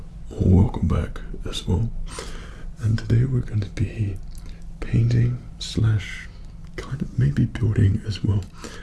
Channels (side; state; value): both; identical; correlation 1.00